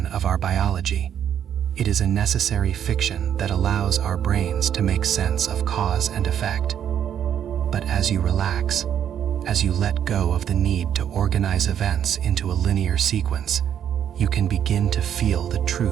of our biology. It is a necessary fiction that allows our brains to make sense of cause and effect. But as you relax, as you let go of the need to organize events into a linear sequence, you can begin to feel the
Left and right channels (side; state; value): left; quieter; 9.3 dB